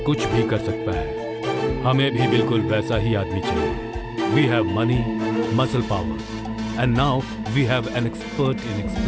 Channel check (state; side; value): identical; both; correlation 1.00